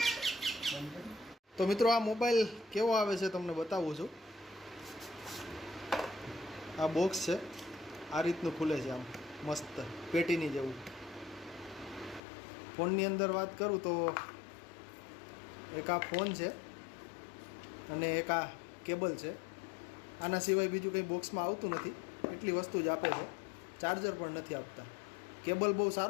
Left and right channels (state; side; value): drops out; right; at 12.2 s